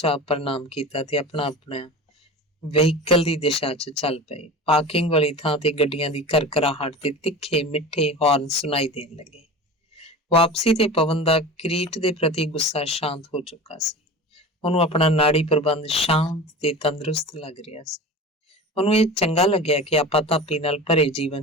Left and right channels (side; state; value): both; normal; correlation 0.33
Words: ਪ੍ਰਣਾਮ ਕੀਤਾ ਤੇ ਆਪਣਾ ਆਪਣਾ ਵਹੀਕਲ ਦੀ ਦਿਸ਼ਾ 'ਚ ਚੱਲ ਪਏ। ਪਾਰਕਿੰਗ ਵਾਲੀ ਥਾਂ ਤੇ ਗੱਡੀਆਂ ਦੀ ਕਰਕਰਾਹਟ ਤੇ ਤਿੱਖੇ ਮਿੱਠੇ ਹੌਰਨ ਸੁਣਾਈ ਦੇਣ ਲੱਗੇ। ਵਾਪਸੀ ਤੇ ਪਵਨ ਦਾ ਕਿਰੀਟ ਦੇ ਪ੍ਰਤੀ ਗੁੱਸਾ ਸ਼ਾਂਤ ਹੋ ਚੁੱਕਾ ਸੀ। ਉਹਨੂੰ ਆਪਣਾ ਨਾੜੀ ਪ੍ਰਬੰਧ ਸ਼ਾਂਤ ਤੇ ਤੰਦਰੁਸਤ ਲੱਗ ਰਿਹਾ ਸੀ। ਉਹਨੂੰ ਇਹ ਚੰਗਾ ਲੱਗਿਆ ਕਿ ਆਪਾਂ ਧਾਪੀ ਨਾਲ ਭਰੇ